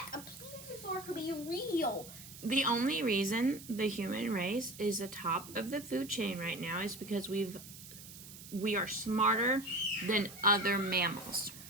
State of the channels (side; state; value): right; noise; hiss, 15 dB below the sound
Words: a plesiosaur could be real. The only reason the human race is the top of the food chain right now is because we are smarter than other mammals.